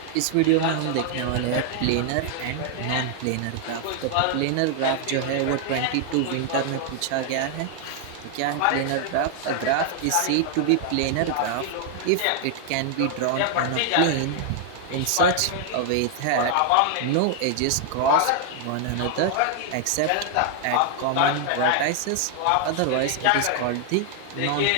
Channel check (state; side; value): different; both; correlation 0.00